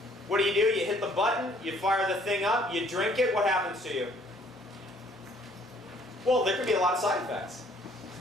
What do? You hit the button, you fire the thing up, you drink it, what happens to you? Well, there could be a lot of side effects.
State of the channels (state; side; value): normal; both; correlation 0.61